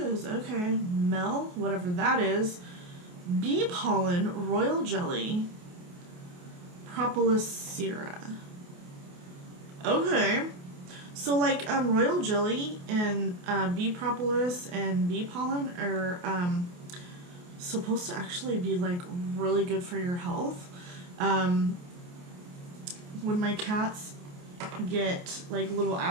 Okay. Mel, whatever that is. Bee pollen, royal jelly. Propolis sera. Okay. So like royal jelly and bee propolis and bee pollen are supposed to actually be like really good for your health. When my cats get like little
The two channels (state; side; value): late; left; 28 ms